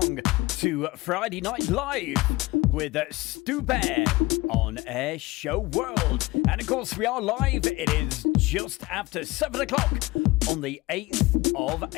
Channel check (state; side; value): quieter; right; 20.8 dB